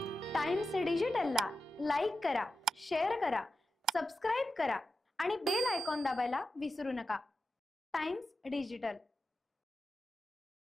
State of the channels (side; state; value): both; normal; correlation 0.90